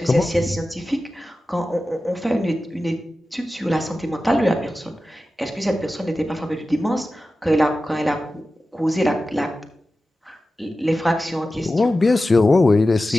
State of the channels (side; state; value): both; normal; correlation 0.94